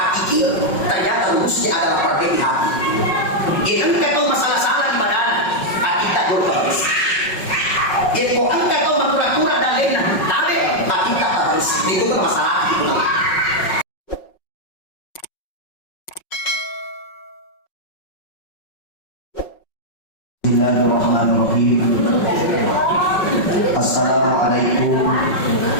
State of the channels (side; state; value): right; late; 5.4 ms